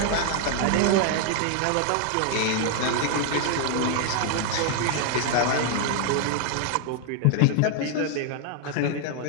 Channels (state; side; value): different; both; correlation 0.00